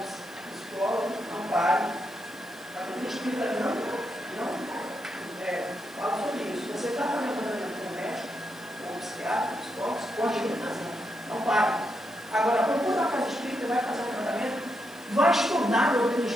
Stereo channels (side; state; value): right; noise; hiss, 23 dB below the sound